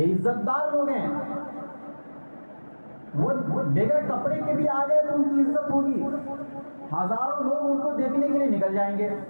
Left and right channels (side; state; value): both; inverted; correlation -1.00